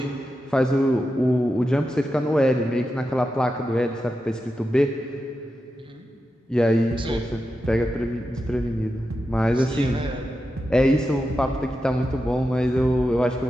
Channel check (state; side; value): normal; both; correlation 0.89